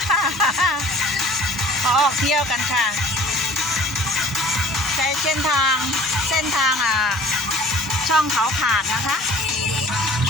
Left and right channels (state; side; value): normal; both; correlation 0.49